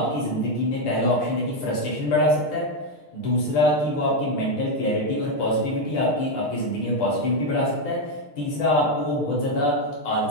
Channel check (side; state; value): right; late; 6.5 ms